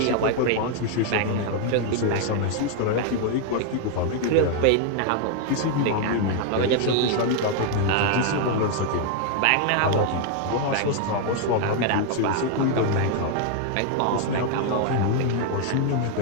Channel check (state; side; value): different; both; correlation 0.00